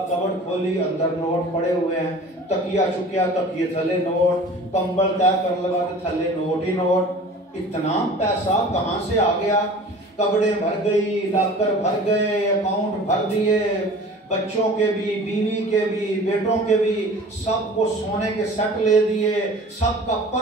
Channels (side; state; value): both; normal; correlation 0.43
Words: कबड़ खोली, अंदर नोट पड़े हुए हैं, तकिया चुकिया, तकिए थले नोट, कंबल तय कर लगा तो थले नोट ही नोट। इतना पैसा कहां से आ गया? कपड़े भर गई, लॉकर भर गए, अकाउंट भर दिए, बच्चों के भी, बीवी के भी, बेटों के भी, सबको सोने के सेट ले दिए, सबका